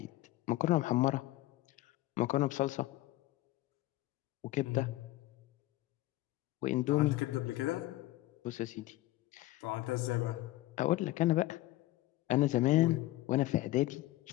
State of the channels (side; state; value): right; quieter; 17.1 dB